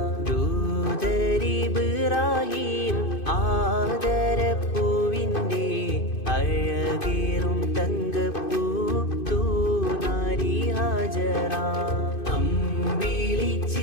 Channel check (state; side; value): late; right; 2.5 ms